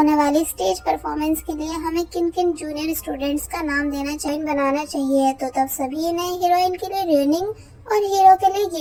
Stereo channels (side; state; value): both; identical; correlation 1.00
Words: वाली स्टेज परफॉर्मेंस के लिए हमें किन किन जूनियर स्टूडेंट्स का नाम बनाना चाहिए। तो तब सभी ने हीरोइन के लिए रोनिंग और हीरो के लिए